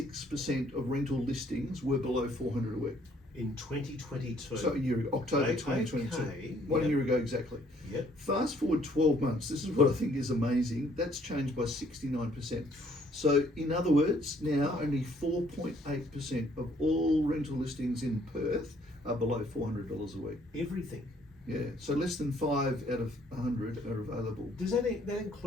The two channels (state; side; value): normal; both; correlation 0.64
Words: of rental listings were below 400 a week. In 2022. So a year ago, October 2022. Okay. One year ago exactly. Yep. Fast forward 12 months, this is what I think is amazing. That's changed by 69%. So in other words, now only 4.8% of all rental listings in Perth are below $400 a week. Everything. Yeah, so less than 5 out of 100 are available. Does that